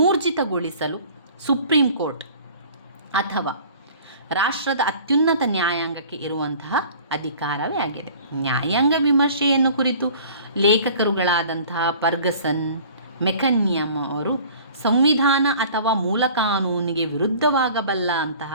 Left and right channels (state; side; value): inverted; both; correlation -0.47